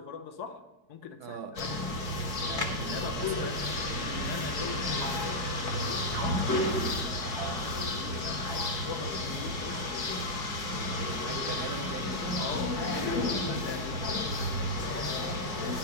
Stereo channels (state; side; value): late; left; 4.7 ms